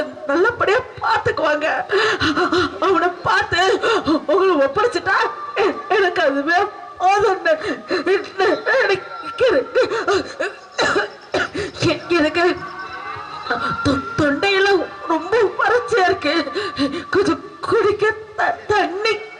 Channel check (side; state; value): both; identical; correlation 1.00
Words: நல்லபடியா பார்த்துக்குவாங்க. அவனை பார்த்து உங்களை ஒப்படைச்சிட்டா எனக்கு அதுவே போதும். எனக்கு தொண்டையெல்லாம் ரொம்ப வறட்சியா இருக்கு. கொஞ்சம் குடிக்க தண்ணி